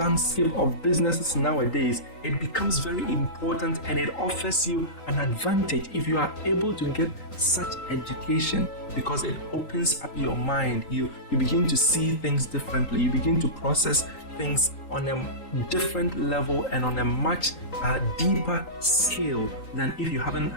of businesses nowadays, it becomes very important, and it offers you an advantage if you are able to get such education, because it opens up your mind. You begin to see things differently. You begin to process things on a different level and on a much deeper scale than if you haven't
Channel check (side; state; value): right; late; 3.8 ms